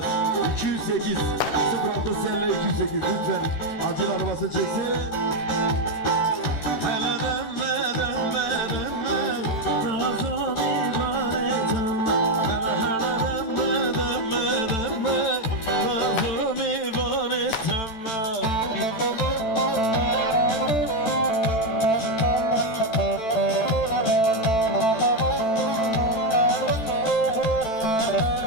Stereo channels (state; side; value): late; right; 13 ms